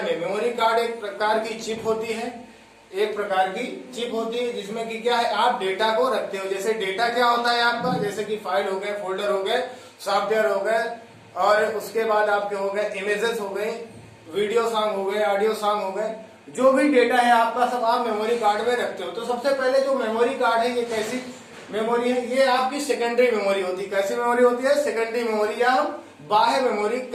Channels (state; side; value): identical; both; correlation 1.00